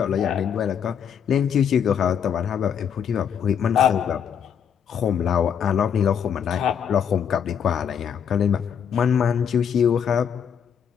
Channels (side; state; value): right; quieter; 7.9 dB